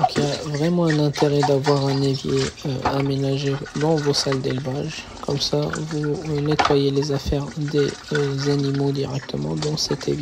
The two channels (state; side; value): identical; both; correlation 1.00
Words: il y a vraiment un intérêt d'avoir un évier aménagé dans vos salles d'élevage. Comme ça, vous nettoyez les affaires des animaux directement dans cet